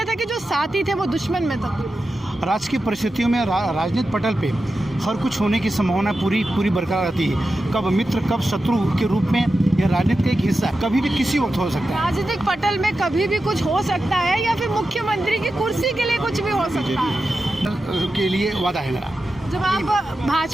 था कि जो साथी थे वो दुश्मन में तब्दील? राजकीय परिस्थितियों में राजनीतिक पटल पे हर कुछ होने की संभावना पूरी बरकरार रहती है। कब मित्र कब शत्रु के रूप में यह राजनीति का एक हिस्सा कभी भी किसी वक्त हो सकता है। राजनीतिक पटल में कभी भी कुछ हो सकता है या फिर मुख्यमंत्री की कुर्सी के लिए कुछ भी हो सकता है के लिए वादा है मेरा। जब आप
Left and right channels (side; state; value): both; normal; correlation 0.91